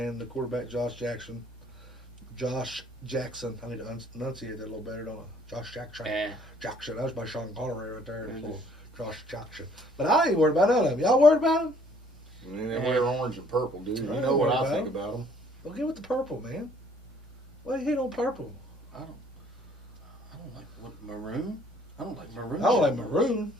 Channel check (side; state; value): both; normal; correlation 0.60